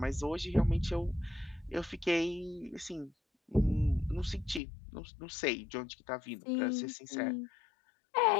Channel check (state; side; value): drops out; right; at 4.6 s